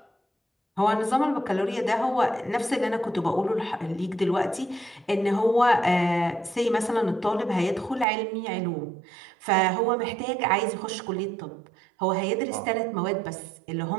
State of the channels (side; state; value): left; drops out; at 8.1 s